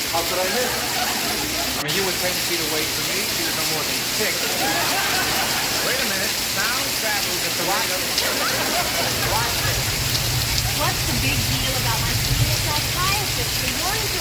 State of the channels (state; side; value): identical; both; correlation 1.00